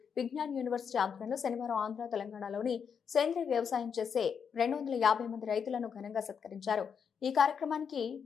విజ్ఞాన్ యూనివర్సిటీ ఆధ్వర్యంలో శనివారం ఆంధ్ర, తెలంగాణలోని సేంద్రీయ వ్యవసాయం చేసే 250 మంది రైతులను ఘనంగా సత్కరించారు. ఈ కార్యక్రమానికి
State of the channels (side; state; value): right; quieter; 6.9 dB